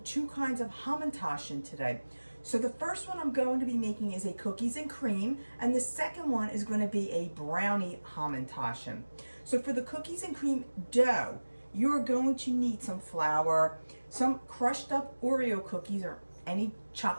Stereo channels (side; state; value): both; inverted; correlation -1.00